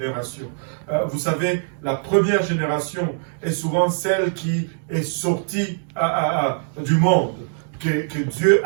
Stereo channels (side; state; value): left; silent; digital silence